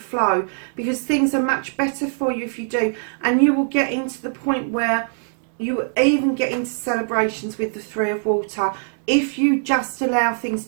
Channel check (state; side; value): silent; left; digital silence